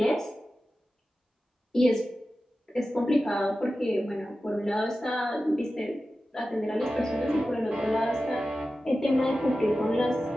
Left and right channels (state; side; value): normal; both; correlation 0.94